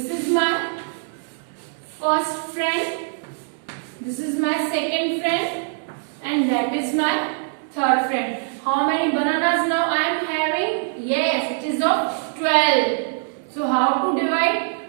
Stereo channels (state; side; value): silent; left; digital silence